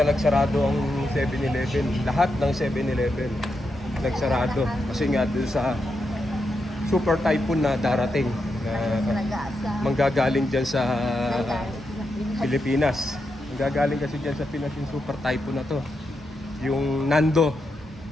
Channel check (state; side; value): normal; both; correlation 0.85